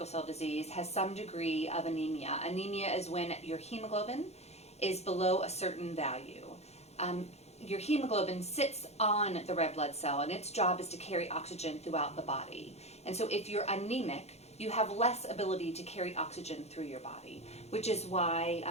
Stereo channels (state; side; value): late; right; 0.31 ms